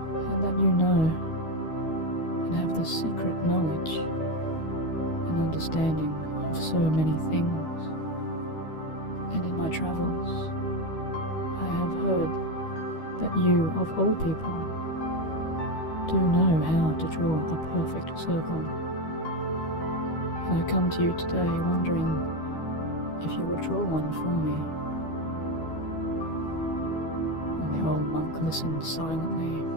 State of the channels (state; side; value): late; right; 12 ms